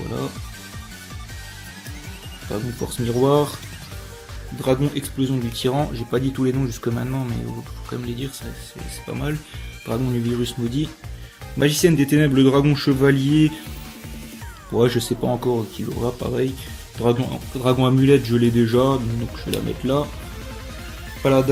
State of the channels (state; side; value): identical; both; correlation 1.00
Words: Dragon Force Miroir. Dragon Explosion du Tyran, j'ai pas dit tous les noms jusque maintenant, mais faut quand même les dire, c'est pas mal. Dragon du Virus Maudit. Magicienne des Ténèbres, le Dragon Chevalier. Ouais, je sais pas encore qui l'aura, pareil. Dragon Amulette, je l'ai déjà, donc je vais la mettre là.